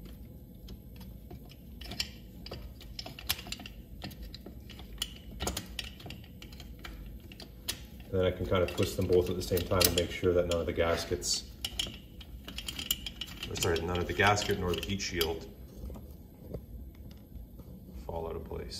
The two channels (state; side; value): identical; both; correlation 1.00